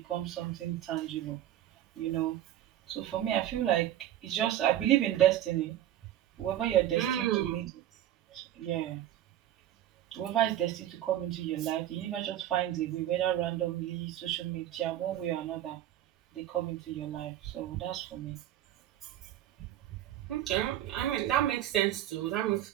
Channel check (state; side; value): quieter; left; 12.3 dB